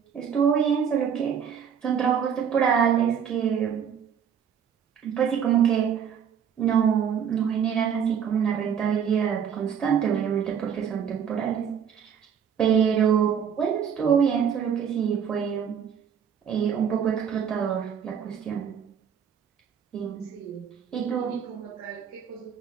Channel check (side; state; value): left; quieter; 7.8 dB